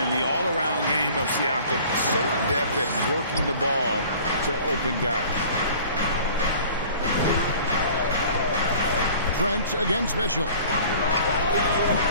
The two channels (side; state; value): both; inverted; correlation -0.48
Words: the all-around game of Siakam so adept at working the ball to open guys. Trent against Mitchell.